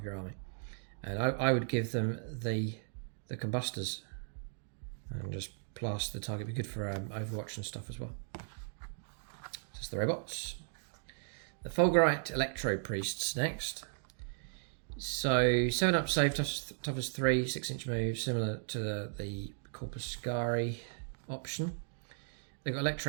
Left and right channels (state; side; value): silent; left; digital silence